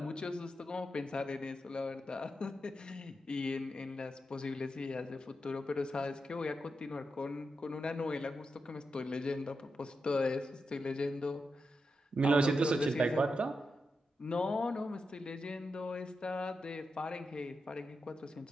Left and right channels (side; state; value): both; normal; correlation 0.87